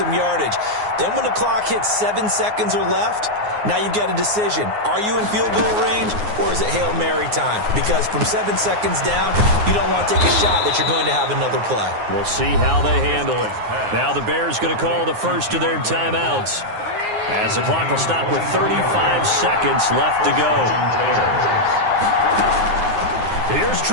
yardage. Then when the clock hits 7 seconds or left, now you've got a decision. Are you in field goal range, or is it Hail Mary time? Because from 7 seconds down, you don't want to take a shot that you're going to have another play. We'll see how they handle it. Now the Bears going to call the first of their timeouts, as the clock will stop with 35 seconds left to go. Here's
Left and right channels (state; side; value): late; left; 9.6 ms